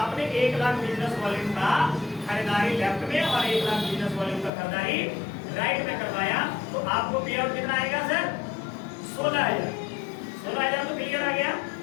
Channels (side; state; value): right; drops out; at 4.5 s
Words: 1 लाख बिजनेस वॉल्यूम का खरीदारी लेफ्ट में और 1 लाख बिजनेस वॉल्यूम का खरीदारी राइट में करवाया तो आपको पे आउट कितना आएगा सर 16,000 तो क्लियर आ गया।